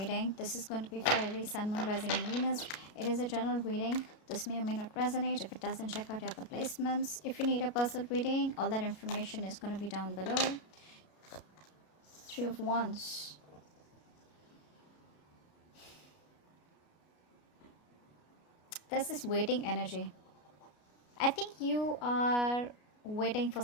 This is going to be for Aries, Sun, Moon, Rising, and Venus. It is a general reading. This may or may not resonate. If it doesn't, check out your other placements. If you need a personal reading, all that information is going to be down below. Three of Wands. There's this waiting energy. I think you are waiting for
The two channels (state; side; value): late; right; 33 ms